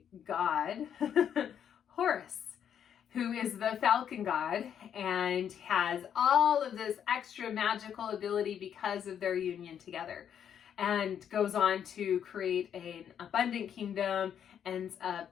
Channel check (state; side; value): quieter; right; 8.8 dB